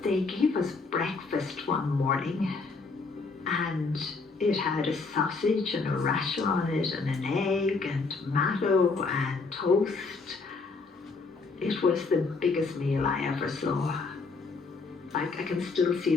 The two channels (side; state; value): right; quieter; 4.2 dB